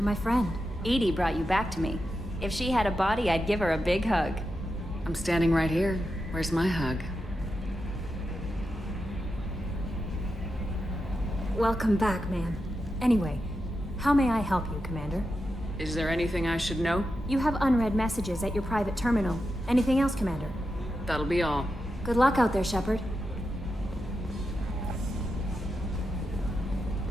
my friend. Edie brought you back to me. If she had a body, I'd give her a big hug. I'm standing right here. Where's my hug? Welcome back, man. Anyway, how may I help you, Commander? Is there anything I should know? You have unread messages at your private terminal. Anything else, Commander? That'll be all. Good luck out there, Shepard.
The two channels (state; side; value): normal; both; correlation 0.88